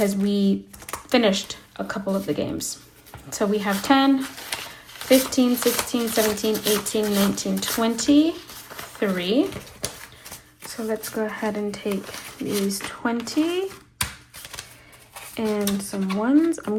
we finished a couple of the games. So we have 10, 15, 16, 17, 18, 19, 20, 3. So let's go ahead and take these 20 and some ones. I'm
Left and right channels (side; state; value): both; identical; correlation 1.00